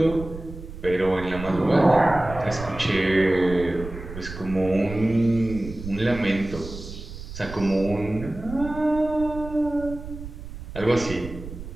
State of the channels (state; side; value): noise; right; rumble, 12 dB below the sound